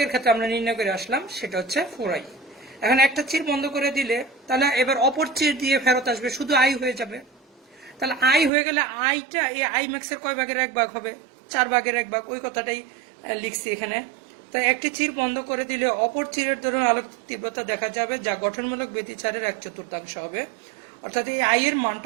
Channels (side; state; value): left; drops out; at 8.5 s